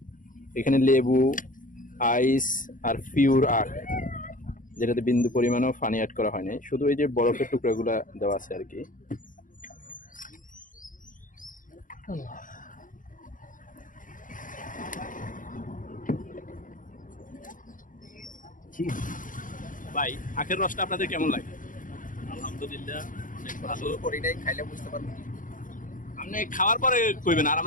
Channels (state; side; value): late; right; 0.39 ms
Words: এখানে লেবু, আইস আর পিওর আখ, যেটাতে বিন্দু পরিমাণও পানি অ্যাড করা হয়নি, শুধু এই যে বরফের টুকরাগুলা দেওয়া আছে আর কি। ভাই আখের রসটা আপনাদের কেমন লাগে? আলহামদুলিল্লাহ অনেক ভালো। করিনাই খাইলে বুঝতে পারবো। আপনি খাওয়ার পরে কইবেন, আর